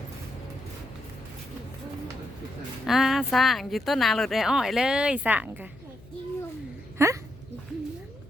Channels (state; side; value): noise; left; hum, 22 dB below the sound